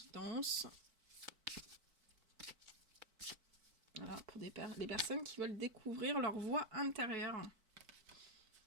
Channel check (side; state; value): left; late; 4.5 ms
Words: Voilà, pour les personnes qui veulent découvrir leur voix intérieure.